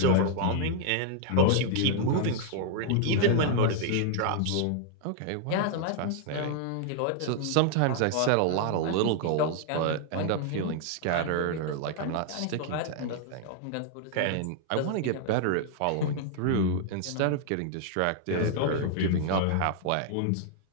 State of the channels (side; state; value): both; different; correlation 0.00